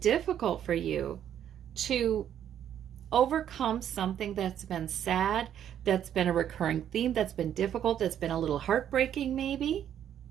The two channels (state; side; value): quieter; left; 10.0 dB